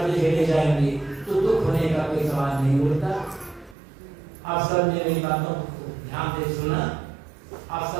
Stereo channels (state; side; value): drops out; left; at 3.8 s